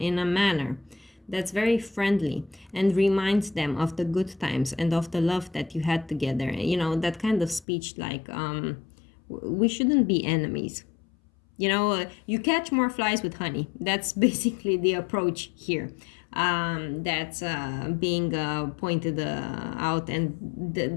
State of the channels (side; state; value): right; drops out; at 7.7 s